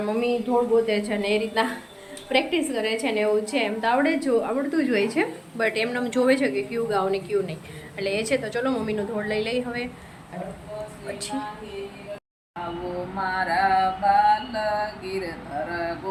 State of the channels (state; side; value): identical; both; correlation 1.00